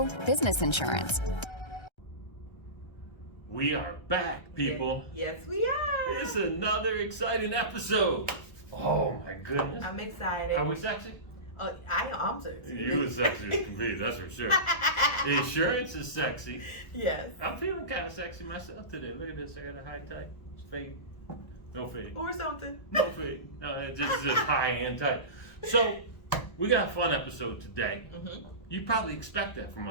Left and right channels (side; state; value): right; late; 1.3 ms